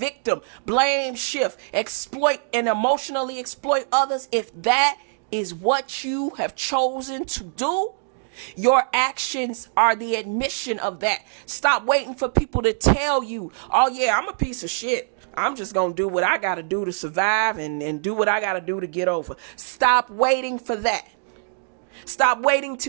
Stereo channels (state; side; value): silent; left; digital silence